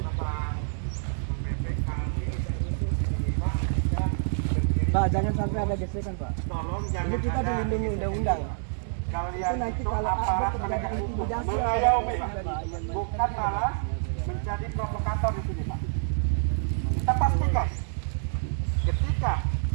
Bapak BPK. Pak, jangan sampai ada gesekan Pak. Tolong Ini jangan kita ada dilindungi undang-undang. kalian Itu nanti itu kalau aparat ada penegak terjadi hukum intimidasi, mengayomi, ada bukan malah menjadi provokator di sini Pak. Kita pastikan ketika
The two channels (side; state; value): left; silent; digital silence